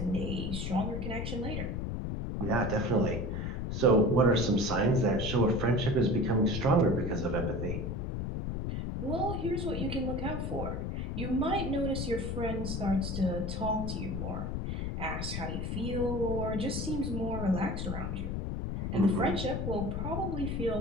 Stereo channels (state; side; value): noise; left; rumble, 3 dB below the sound